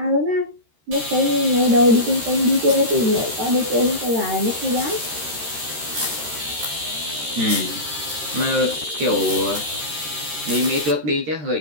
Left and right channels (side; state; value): left; late; 13 ms